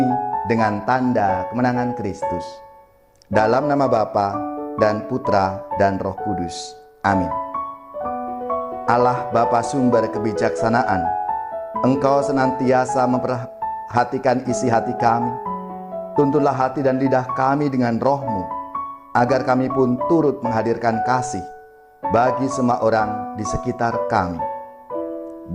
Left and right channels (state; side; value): identical; both; correlation 1.00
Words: dengan tanda kemenangan Kristus. Dalam nama Bapa dan Putra dan Roh Kudus. Amin. Allah Bapa sumber kebijaksanaan, Engkau senantiasa memperhatikan isi hati kami. Tuntunlah hati dan lidah kami dengan Roh-Mu, agar kami pun turut menghadirkan kasih bagi semua orang di sekitar kami.